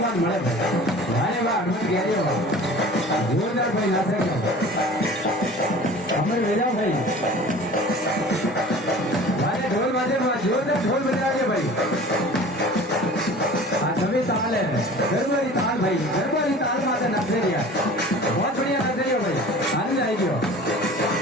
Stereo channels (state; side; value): normal; both; correlation 0.42